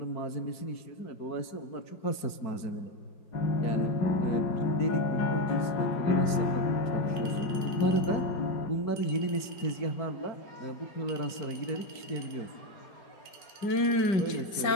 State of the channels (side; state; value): right; late; 4.6 ms